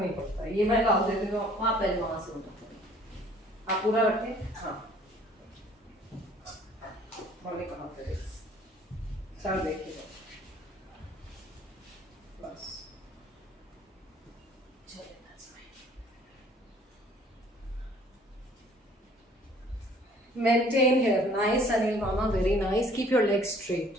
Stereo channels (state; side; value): normal; both; correlation 0.55